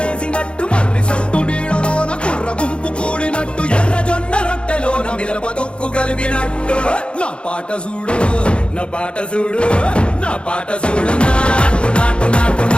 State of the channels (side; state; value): right; late; 0.056 ms